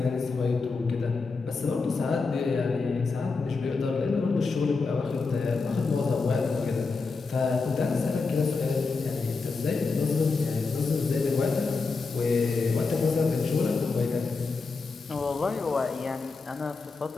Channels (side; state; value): right; quieter; 4.3 dB